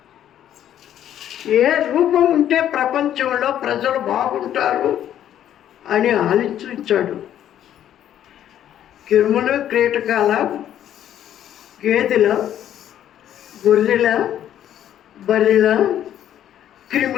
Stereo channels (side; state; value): right; quieter; 10.9 dB